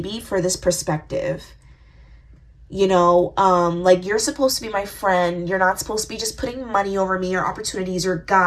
for this perspective. Like, you're supposed to be my friend. You're not supposed to be just putting money over me or opportunities or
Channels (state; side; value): identical; both; correlation 1.00